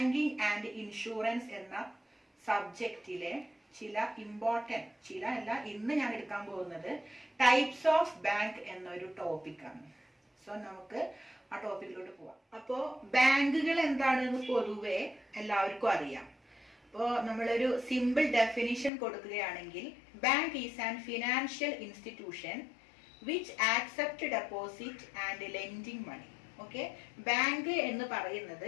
ആൻഡ് ഇൻഷുറൻസ് എന്ന സബ്ജക്റ്റിലെ ഇന്ന് ഞാൻ എടുക്കാൻ പോകുന്നത് ടൈപ്സ് ഓഫ് ബാങ്ക് എന്നൊരു ടോപ്പിക്കാണ്. സോ നമുക്ക് ആ ടോപ്പിക്കിലോട്ട് പോവാം. അപ്പോൾ ബാങ്കുകൾ എന്താണെന്ന് പൊതുവെ എല്ലാവർക്കും അറിയാം. അപ്പോൾ നമ്മളൊരു സിമ്പിൾ ഡെഫിനിഷൻ കൊടുക്കുകയാണെങ്കിൽ, bank is an financial institution which accept deposit and lending money. Okay, bank എന്ന് പറയുന്നത്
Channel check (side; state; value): right; drops out; at 18.9 s